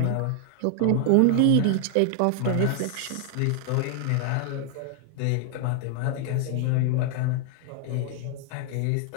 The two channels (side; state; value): both; different; correlation 0.00